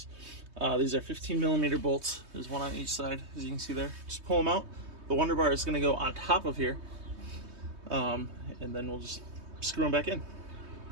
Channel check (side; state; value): left; late; 3.2 ms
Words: These are 15mm bolts. There's one on each side, as you can see there. Just pull them out. The Wonder Bar is going to go on top of here, and then we'll just screw them back in.